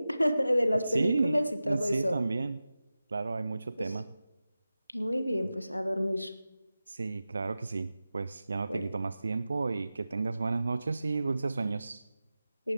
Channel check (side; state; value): both; inverted; correlation -0.94